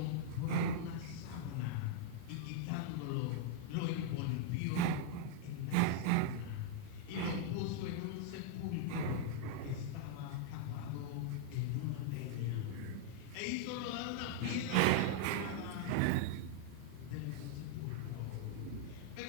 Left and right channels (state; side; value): different; both; correlation -0.01